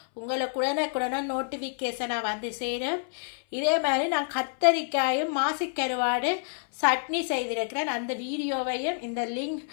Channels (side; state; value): right; silent; 59 dB below the other